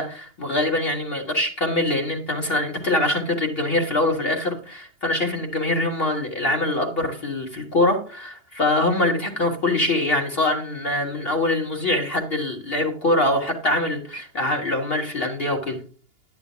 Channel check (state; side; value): late; right; 2.8 ms